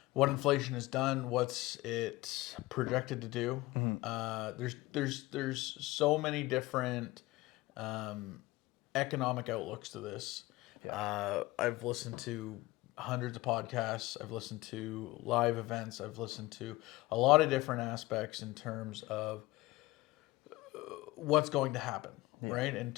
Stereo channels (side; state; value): right; quieter; 19.6 dB